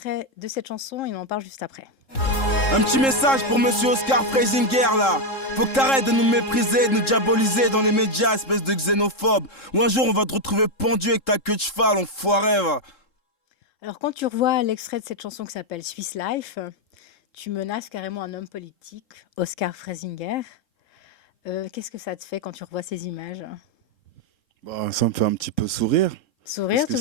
de cette chanson et on en parle juste après. Un petit message pour monsieur Oscar Freisinger là. Faut que t'arrêtes de nous mépriser, de nous diaboliser dans les médias, espèce de xénophobe. Ou un jour on va te retrouver pendu avec ta queue de cheval, enfoiré va. Alors quand tu revois l'extrait de cette chanson qui s'appelle Swiss Life, tu menaces carrément un homme politique, Oscar Freisinger. Qu'est-ce que ça te fait quand tu revois ces images? Bah, ça me fait un petit peu sourire. Parce Sourire, que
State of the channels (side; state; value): right; late; 3.7 ms